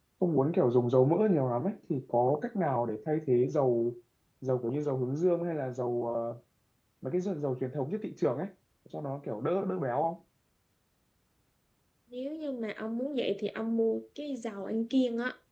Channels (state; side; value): identical; both; correlation 1.00